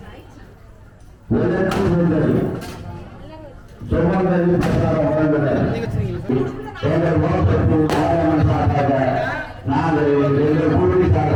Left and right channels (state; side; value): identical; both; correlation 1.00